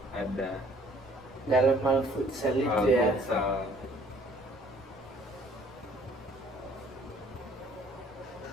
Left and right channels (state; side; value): normal; both; correlation 0.58